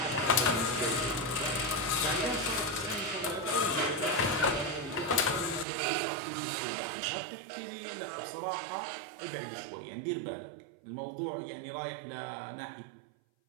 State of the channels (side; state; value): left; drops out; at 5.7 s